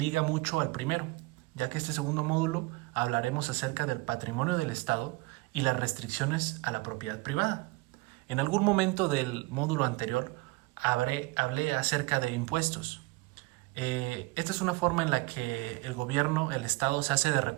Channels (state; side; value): quieter; left; 23.1 dB